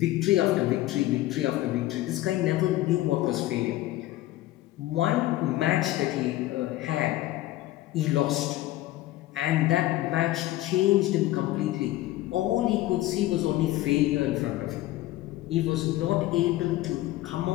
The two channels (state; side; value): quieter; right; 16.1 dB